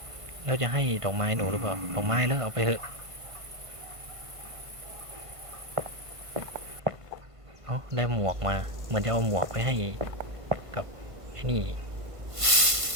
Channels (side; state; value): left; late; 1.5 ms